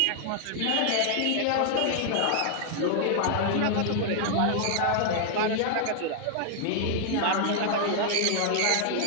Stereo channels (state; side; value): different; both; correlation -0.01